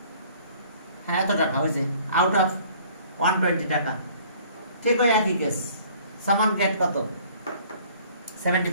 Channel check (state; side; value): inverted; both; correlation -0.55